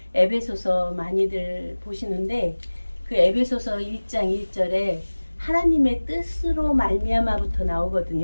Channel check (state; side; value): inverted; both; correlation -1.00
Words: 에베소서 많이들 보시는데 그 에베소서 1장 1절에 하나님의 뜻으로 말미암아부터